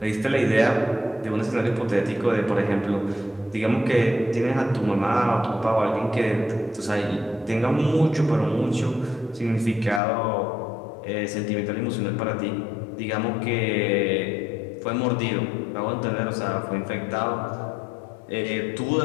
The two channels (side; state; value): right; drops out; at 10.0 s